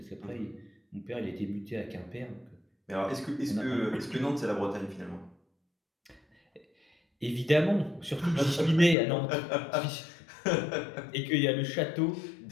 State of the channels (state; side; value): drops out; right; at 9.0 s